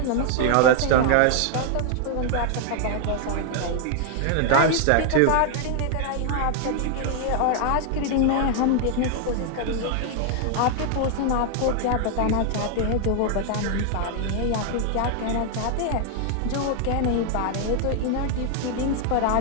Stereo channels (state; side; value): different; both; correlation 0.00